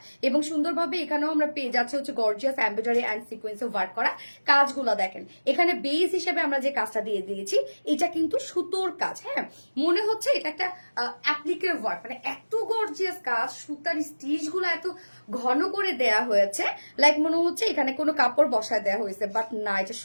এবং সুন্দরভাবে এখানেও আমরা পেয়ে যাচ্ছি হচ্ছে গর্জিয়াস এমব্রয়ডারি অ্যান্ড সিকোয়েন্সে ওয়ার্ক করা। কাজগুলো দেখেন, এখানে বেস হিসেবে আমরা যে কাজটা দিয়ে দিয়েছি, এটা কিন্তু সুতোর কাজ। হ্যাঁ, মনে হচ্ছে এটা একটা অ্যাপ্লিকের ওয়ার্ক, মানে এত গর্জিয়াস কাজ, সুতার স্টিচ গুলো এত ঘন করে দেয়া হয়েছে, লাইক মনে হচ্ছে এখানে কোনো কাপড় বসায় দেওয়া হয়েছে, বাট না, এটা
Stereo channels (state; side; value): inverted; both; correlation -1.00